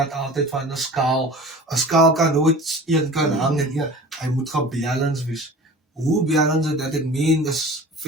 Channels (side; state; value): both; normal; correlation 0.40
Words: altijd van een skaal. Een skaal kan nooit één kan hangen. Ja, hij moet gebalance wees. Hoe balance dat ik meen is